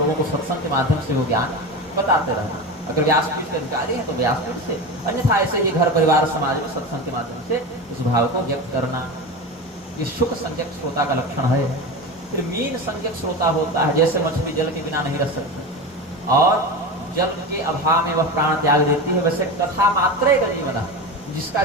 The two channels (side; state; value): both; normal; correlation 0.24